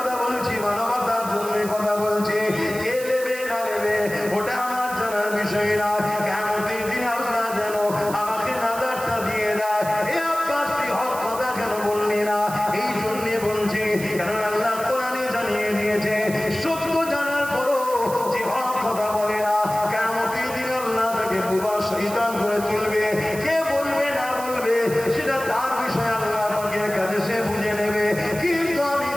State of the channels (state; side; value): noise; right; hiss, 12 dB below the sound